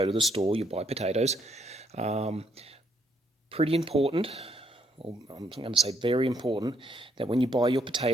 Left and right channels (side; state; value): both; normal; correlation 0.71